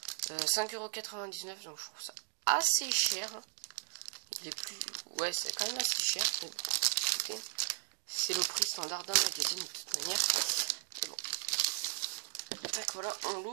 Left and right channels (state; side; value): silent; left; digital silence